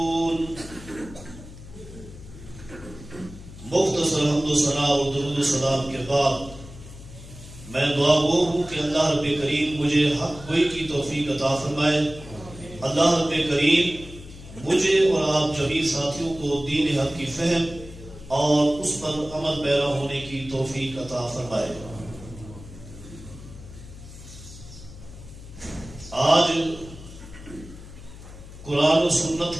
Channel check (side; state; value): left; noise; hum, 15 dB below the sound